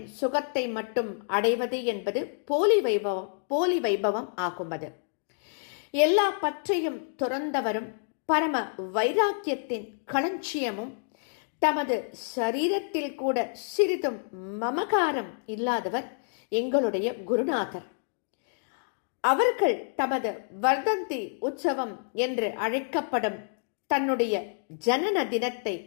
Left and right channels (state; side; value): silent; right; digital silence